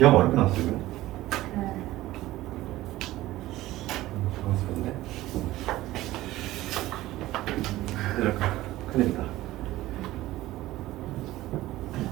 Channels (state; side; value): quieter; left; 16.5 dB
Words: 어렵게 나왔어 지금? 네. 당황스럽네. 큰일이다.